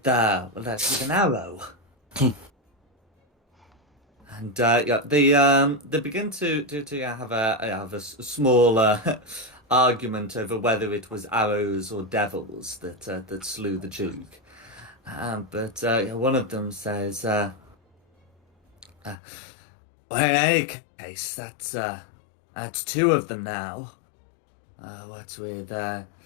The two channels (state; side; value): drops out; right; at 19.2 s